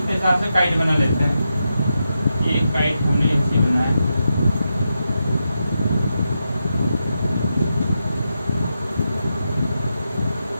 के हिसाब से काइट बना लेते हैं। ये काइट हमने ऐसे बनाया,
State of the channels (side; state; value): both; inverted; correlation -0.87